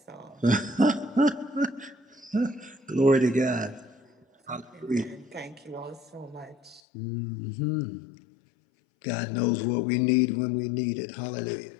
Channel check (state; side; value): drops out; right; at 6.8 s